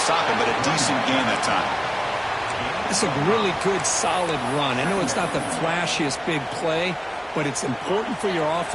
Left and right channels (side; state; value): both; identical; correlation 1.00